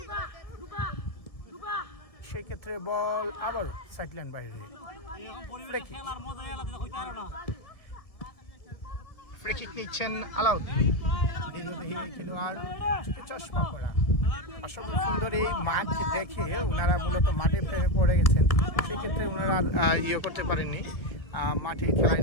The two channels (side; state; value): right; late; 1.7 ms